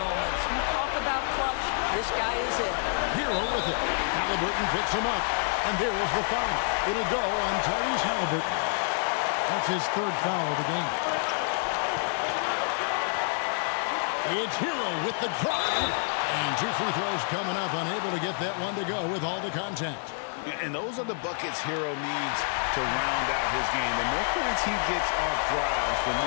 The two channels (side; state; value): right; silent; 59 dB below the other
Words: You talk about clutch, this guy is it. Hero with it. Halliburton picks him up. And there is the foul. It'll go on Tyrese Halliburton. That's his 3rd foul of the game. It's Hero with the drive. And 2 free throws coming up. Unable to get that one to go with all the contact. And those are the buckets Hero needs to round out his game. The more points he gets off drives, the